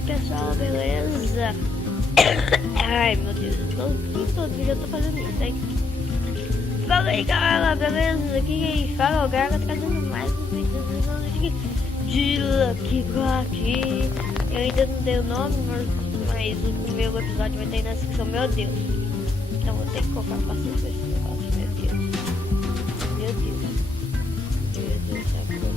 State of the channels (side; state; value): right; quieter; 3.7 dB